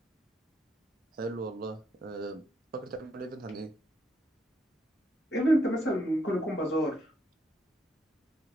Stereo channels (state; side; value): normal; both; correlation 0.75